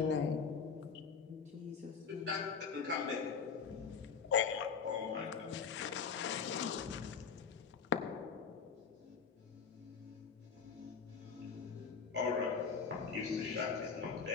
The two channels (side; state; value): right; quieter; 6.0 dB